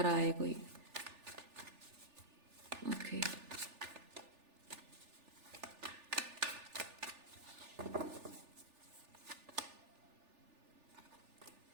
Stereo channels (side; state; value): left; late; 3.4 ms